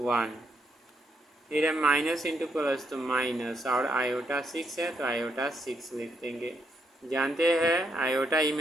फिर है माइनस इंटू प्लस तो माइनस, और आयोटा 6 है तो आयोटा 6 लिख देंगे। जानते हैं आयोटा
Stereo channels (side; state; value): both; normal; correlation 0.78